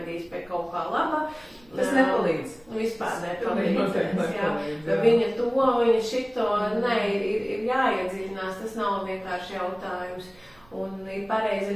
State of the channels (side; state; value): right; noise; rumble, 29 dB below the sound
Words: pie kaut kā laba. Tas nepalīdz. Vispār nepalīdz. Viņa to, viņa šito, ir jāiedziļinās, tas nav vienkārši jautājums. Un ir pareizi